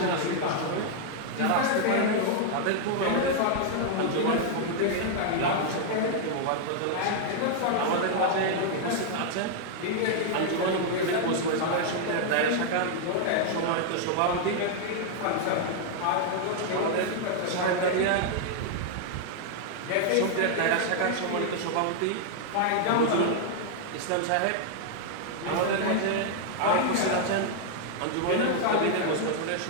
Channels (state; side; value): different; both; correlation 0.00